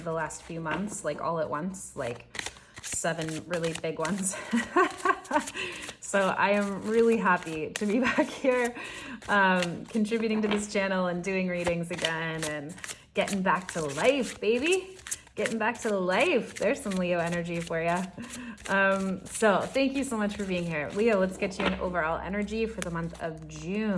the last few months, like all at once, like 7 really big ones. So I am really happy to be back here, contributing to this channel and doing readings again and getting back to life, baby. Getting back to life. There's some Leo energy for you. So thank you so much for being here. Leo, let's get you an overall energy for the month of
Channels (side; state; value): both; identical; correlation 1.00